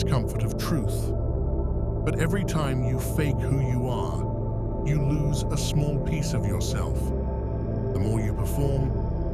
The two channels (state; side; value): identical; both; correlation 1.00